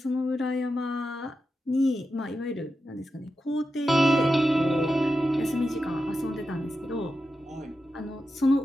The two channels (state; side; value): normal; both; correlation 0.90